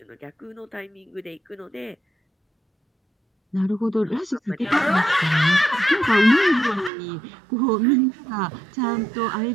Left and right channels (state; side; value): drops out; left; at 6.9 s